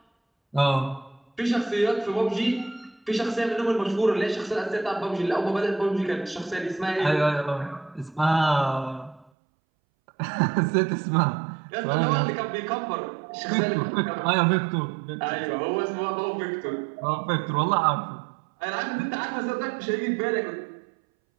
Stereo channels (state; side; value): drops out; left; at 9.3 s